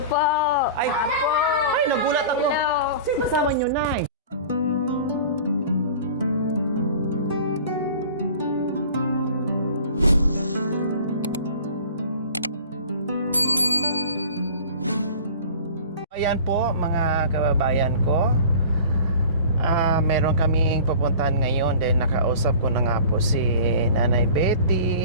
po. Ay, Apo. ay, nagulat ako. Hello. Sino kasama nyo, Nay? Ayan po, mga kababayan ko. Meron kaming pupuntahan ngayon dahil nakausap ko na nga po si Nanay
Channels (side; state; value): both; inverted; correlation -0.42